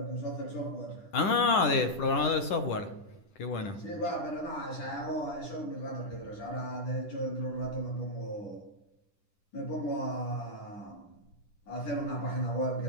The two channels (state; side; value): late; right; 10 ms